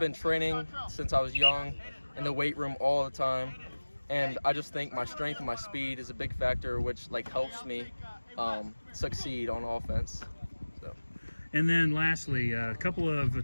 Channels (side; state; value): both; inverted; correlation -1.00